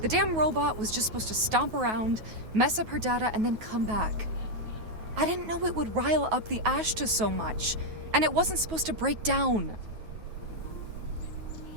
damn robot was just supposed to stomp around, mess up her data, and then come back. I didn't know it would rile up the Ashta so much, and it wasn't supposed to break down.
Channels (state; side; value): late; left; 9.3 ms